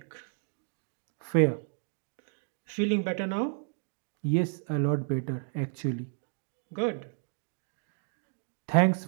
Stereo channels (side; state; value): left; silent; 56 dB below the other